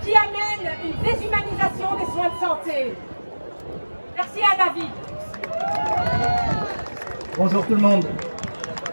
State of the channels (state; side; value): inverted; both; correlation -1.00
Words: amène une déshumanisation des soins de santé. Merci à David. Bonjour tout le monde.